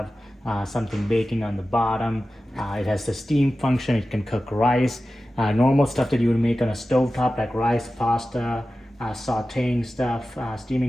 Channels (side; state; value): both; normal; correlation 0.94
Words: something baking on the bottom. It has the steam function. It can cook rice, normal stuff that you would make on a stovetop like rice, pasta, sauteing stuff,